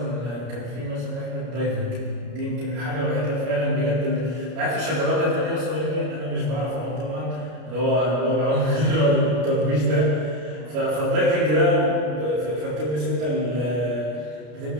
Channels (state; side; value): late; left; 33 ms